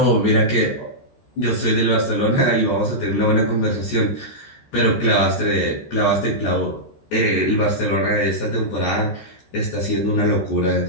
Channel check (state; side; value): late; right; 13 ms